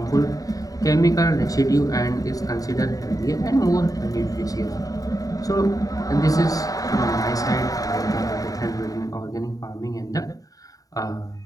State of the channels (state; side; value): late; right; 0.17 ms